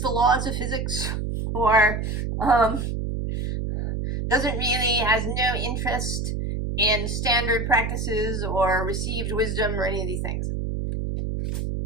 the laws of physics, or doesn't really, has no interest in standard practices or received wisdom or any of these things.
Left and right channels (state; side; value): noise; right; hum, 2 dB below the sound